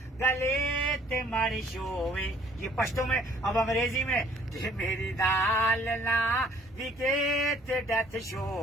گلے تے ماری شوے یہ پشتو میں اب انگریزی میں جی میری دال نہ وکے تے ڈیتھ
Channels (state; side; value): normal; both; correlation 0.58